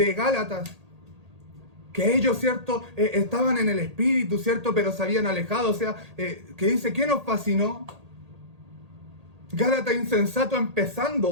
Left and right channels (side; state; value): left; late; 1.8 ms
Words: Gálatas, que ellos, ¿cierto? Estaban en el Espíritu, ¿cierto? Pero se habían alejado, o sea, que dice, ¿qué nos fascinó? Gálatas insensato,